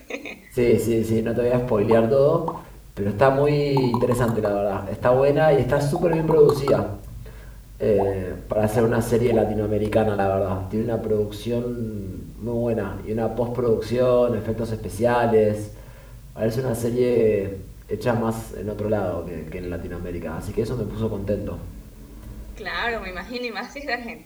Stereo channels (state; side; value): identical; both; correlation 1.00